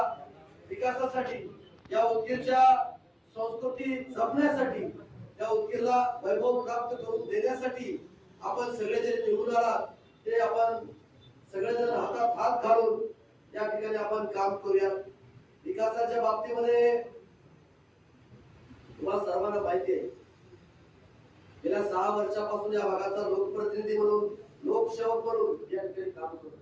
विकासासाठी, या उदगीरच्या संस्कृती जपण्यासाठी, या उदगीरला वैभव प्राप्त करून देण्यासाठी आपण सगळे जे निवडून आलात ते आपण सगळेजण हातात हात घालून या ठिकाणी आपण काम करूया. विकासाच्या बाबतीमध्ये तुम्हाला सर्वांना माहिती आहे, गेल्या 6 वर्षापासून या भागाचा लोकप्रतिनिधी म्हणून, लोकसेवक म्हणून या ठिकाणी काम करतो.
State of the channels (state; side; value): identical; both; correlation 1.00